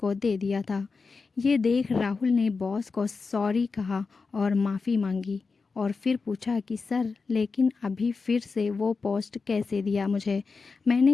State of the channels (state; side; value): quieter; right; 4.5 dB